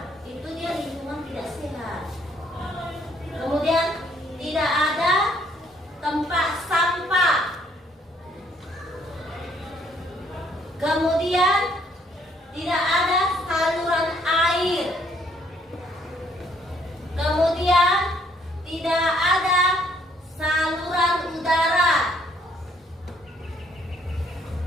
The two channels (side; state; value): both; normal; correlation 0.67